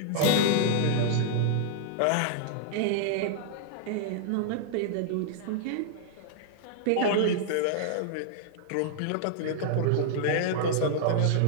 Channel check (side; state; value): both; different; correlation -0.01